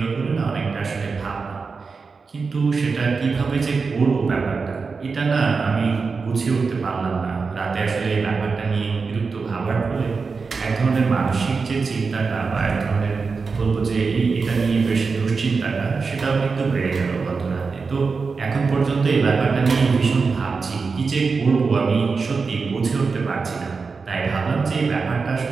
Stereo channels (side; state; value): left; quieter; 4.7 dB